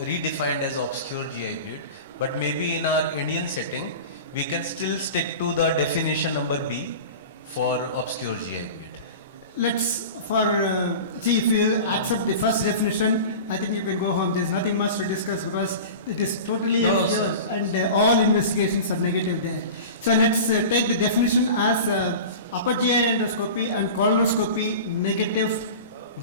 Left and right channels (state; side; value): inverted; both; correlation -0.34